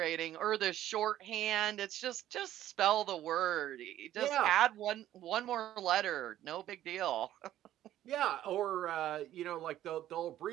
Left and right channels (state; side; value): quieter; left; 12.8 dB